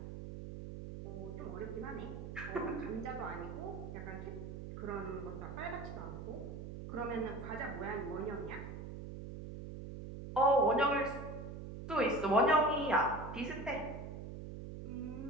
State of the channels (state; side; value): noise; right; hum, 9 dB below the sound